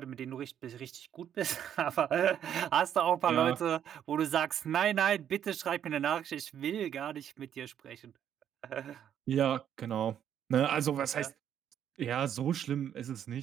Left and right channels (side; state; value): left; quieter; 9.6 dB